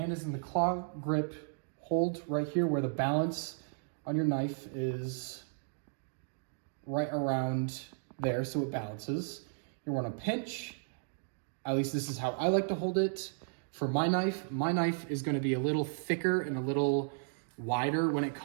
is in the claw grip. Hold right here where the balance on your knife is right around there so it balances. You want to pinch. At least this is how I like to hold it. For my knife is going to be a little thicker and a little wider when it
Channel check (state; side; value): silent; left; digital silence